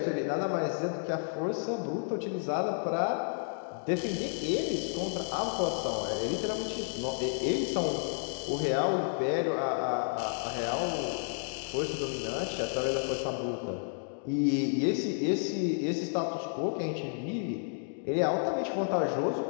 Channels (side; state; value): right; silent; digital silence